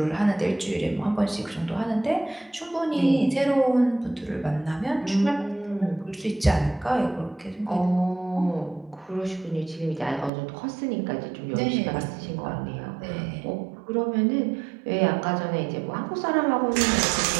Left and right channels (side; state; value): left; drops out; at 10.3 s